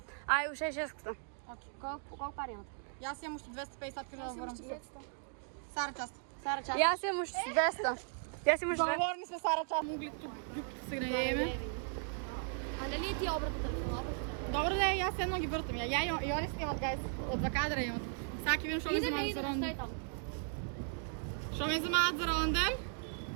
Ај, уште 600. Колко пари имате? Јас имам уште 250 кажа да ворам. Сара, част. Сара, част. Јас имам уште 200. Јас имам уште 200. Договорни сме, Сара, част. Могли тук се гнајеме. А нали ти обратно телефоната? Добро да е, јас едно ги вртам. Ја и они снимат, гайс. Од 2 кадра имам. Саки видам што ме замаат за ронден. там. Што ме замаат за ронден?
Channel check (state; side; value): silent; left; 53 dB below the other